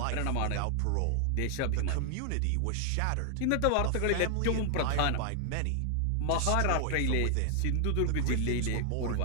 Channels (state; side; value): different; both; correlation 0.00